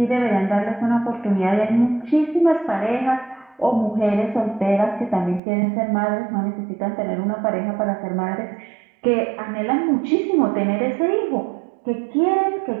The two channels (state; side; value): drops out; left; at 5.4 s